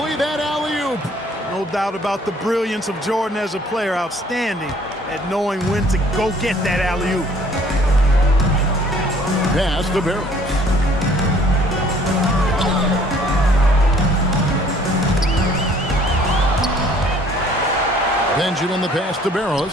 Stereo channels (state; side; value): normal; both; correlation 0.57